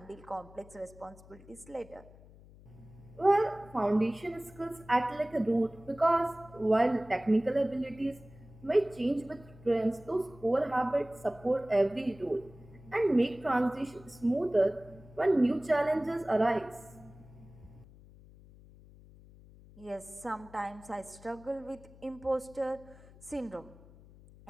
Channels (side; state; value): left; noise; hum, 22 dB below the sound